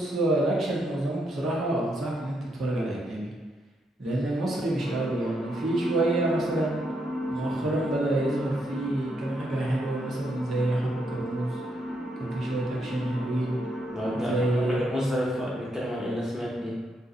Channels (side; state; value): both; normal; correlation 0.78